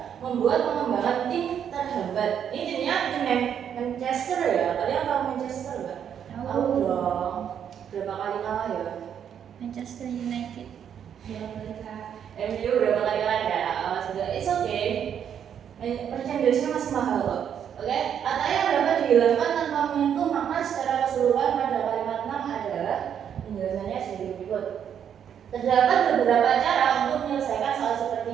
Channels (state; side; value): quieter; left; 8.7 dB